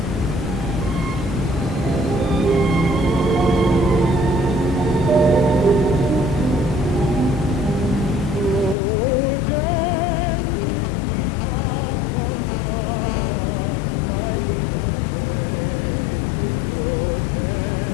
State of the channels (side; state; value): right; drops out; at 8.8 s